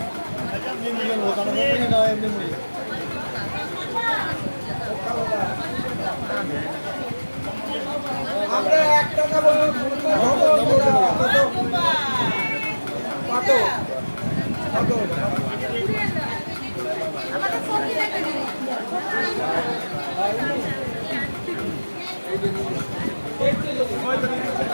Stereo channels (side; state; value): both; inverted; correlation -1.00